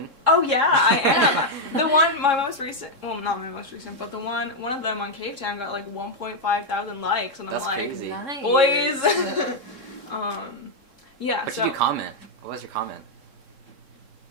Oh yeah, I am. My most recent, well, not my most recent, but one of them on Cave Town got like 1.5 thousand likes, and I'm That's like, crazy. Nice. boys. Yeah. What so. did you comment? What was your comment?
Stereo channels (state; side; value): late; left; 3.7 ms